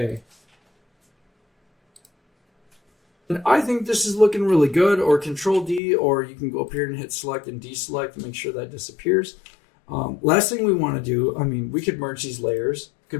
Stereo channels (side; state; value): right; drops out; at 5.8 s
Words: And I think this is looking really good, or Control D, or you can go up here and hit Select and Deselect to make sure that disappears. Last thing we want to do, we could merge these layers,